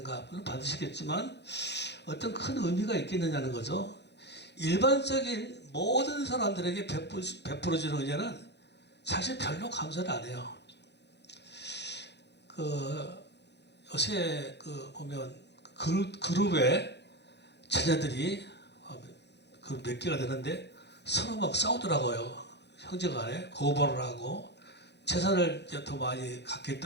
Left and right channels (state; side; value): late; right; 0.50 ms